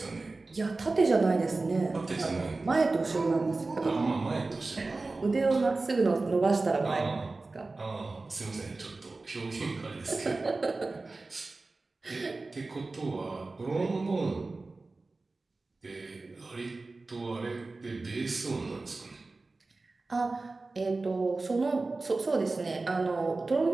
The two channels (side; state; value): left; quieter; 3.5 dB